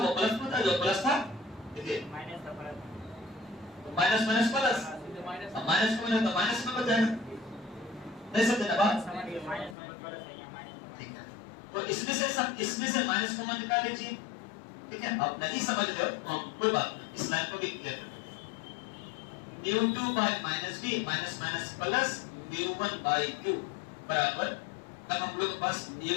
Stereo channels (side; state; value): right; drops out; at 9.8 s